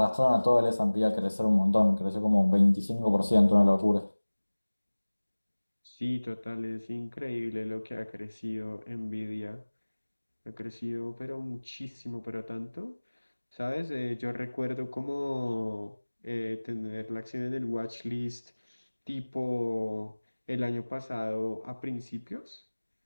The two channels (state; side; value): inverted; both; correlation -1.00